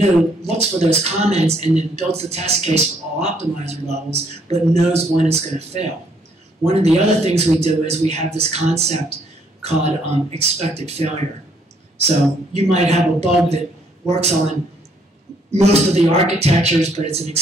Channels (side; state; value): both; normal; correlation 0.68